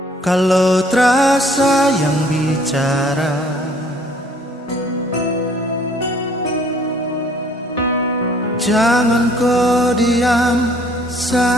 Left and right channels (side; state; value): both; normal; correlation 0.60